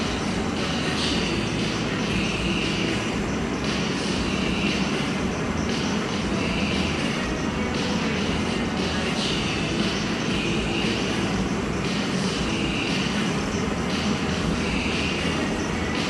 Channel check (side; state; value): both; identical; correlation 1.00